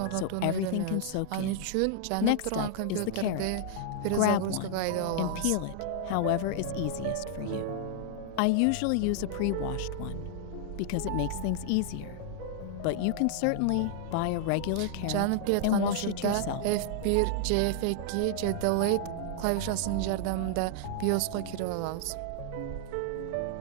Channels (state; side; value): different; both; correlation -0.01